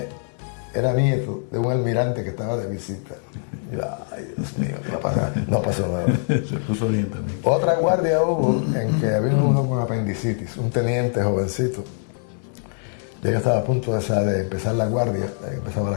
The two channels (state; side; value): silent; right; digital silence